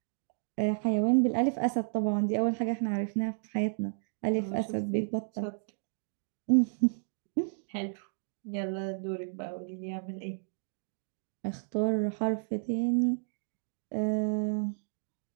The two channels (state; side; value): silent; left; digital silence